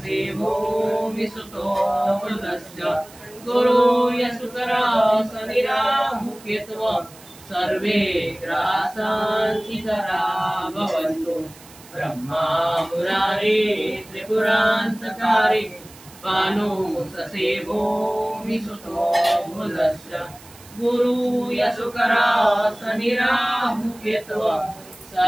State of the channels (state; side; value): noise; right; hiss, 22 dB below the sound